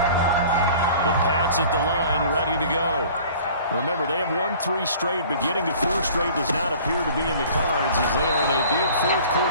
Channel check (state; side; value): inverted; both; correlation -0.48